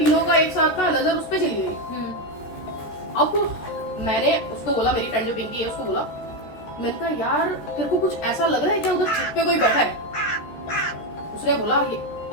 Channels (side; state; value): right; late; 13 ms